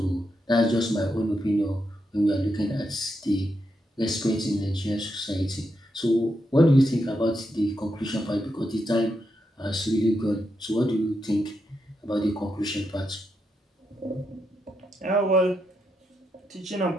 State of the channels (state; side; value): normal; both; correlation 0.83